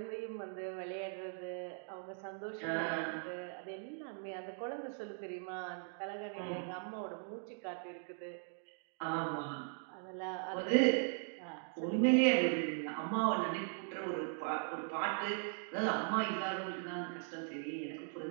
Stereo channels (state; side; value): silent; left; 51 dB below the other